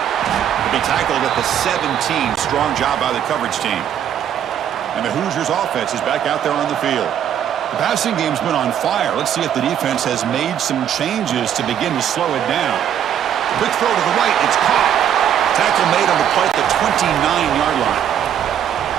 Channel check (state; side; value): quieter; left; 9.6 dB